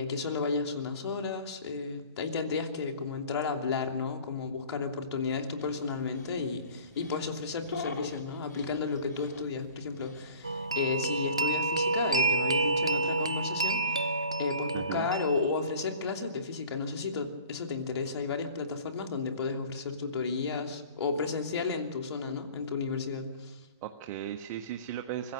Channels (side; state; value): both; inverted; correlation -0.46